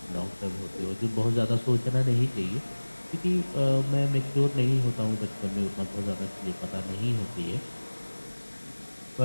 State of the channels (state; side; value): inverted; both; correlation -1.00